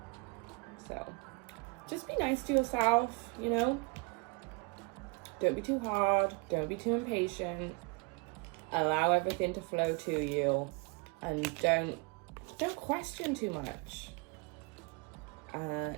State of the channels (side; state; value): left; quieter; 29.2 dB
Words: So just be nice to yourself, you know? Don't be too hard. Don't be too impatient. Allow everything to flow to you. And don't question too much.